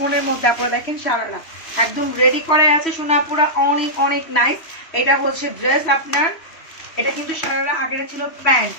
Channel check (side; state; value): right; late; 3.1 ms